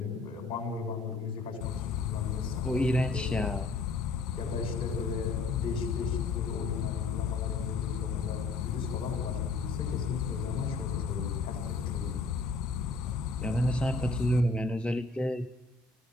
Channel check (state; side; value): quieter; right; 3.9 dB